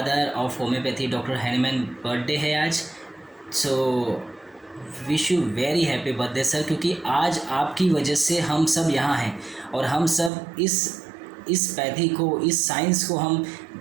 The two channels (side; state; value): left; drops out; at 10.3 s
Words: of homeopathy doctor Hahnemann birthday है आज। So wish you very happy birthday sir, क्योंकि आज आपकी वजह से हम सब यहाँ हैं और हम सब इस पैथी को, इस साइंस को हम